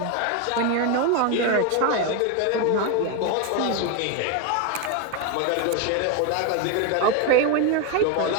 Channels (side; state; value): both; different; correlation 0.02